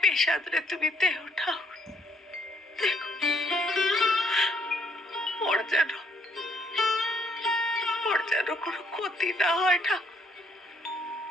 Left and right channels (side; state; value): both; normal; correlation 0.68